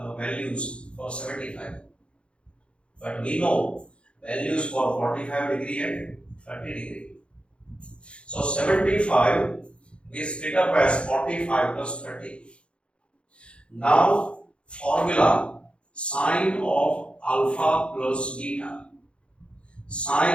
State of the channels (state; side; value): late; right; 0.058 ms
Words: values for 75. But we know values for 45 degree and 30 degree. So 75 is split up as 45 plus 30. Now formula sine of alpha plus beta.